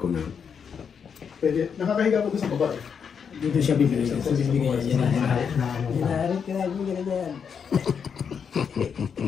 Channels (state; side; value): quieter; right; 6.8 dB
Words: na. Pwede. Nakakahiga ko doon sa baba eh. Dito siya bibili. Ito bibigay yan. Na ano pa.